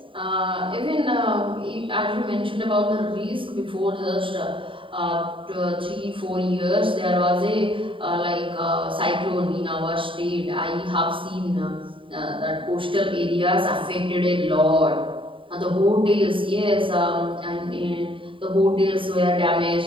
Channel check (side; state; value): left; late; 0.25 ms